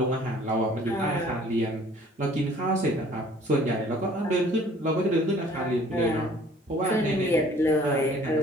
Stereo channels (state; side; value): normal; both; correlation 0.54